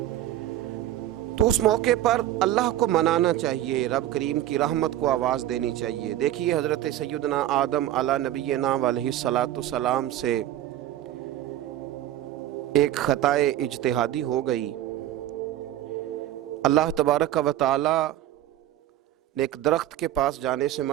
تو اس موقع پر اللہ کو منانا چاہیے، رب کریم کی رحمت کو آواز دینی چاہیے۔ دیکھیے حضرت سیدنا آدم علی نبینا علیہ الصلاۃ والسلام سے ایک خطائے اجتہادی ہو گئی۔ اللہ تبارک و تعالی نے ایک درخت کے پاس جانے سے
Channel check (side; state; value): left; quieter; 13.2 dB